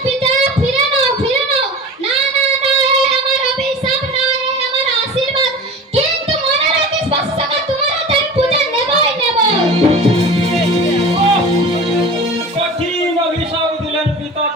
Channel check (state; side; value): normal; both; correlation 0.35